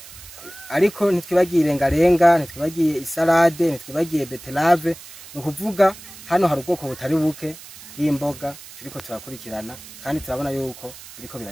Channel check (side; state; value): right; noise; hiss, 17 dB below the sound